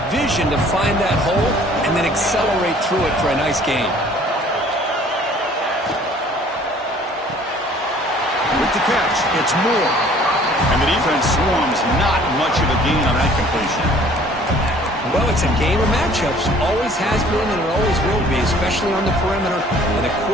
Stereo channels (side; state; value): both; normal; correlation 0.54